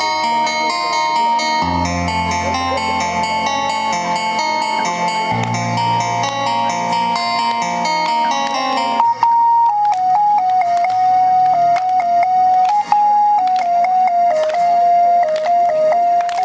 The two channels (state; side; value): identical; both; correlation 1.00